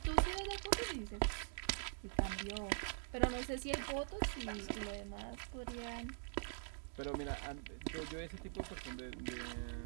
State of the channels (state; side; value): silent; left; digital silence